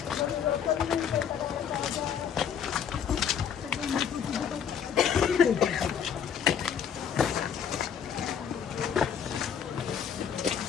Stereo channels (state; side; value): quieter; right; 7.9 dB